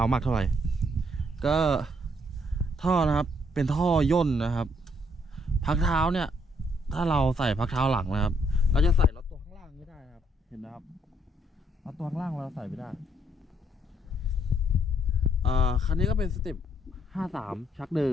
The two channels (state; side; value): normal; both; correlation 0.70